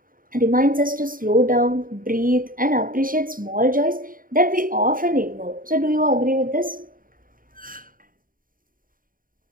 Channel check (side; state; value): left; late; 0.41 ms